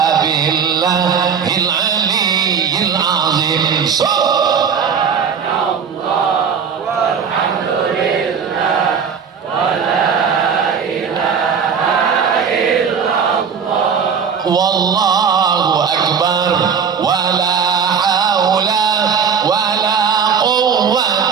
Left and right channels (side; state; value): left; quieter; 6.6 dB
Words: billahil aliyyil azim. Subhanallah walhamdulillah